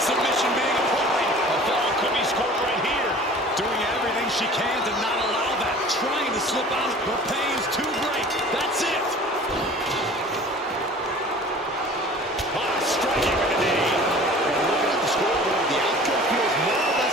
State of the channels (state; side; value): normal; both; correlation 0.44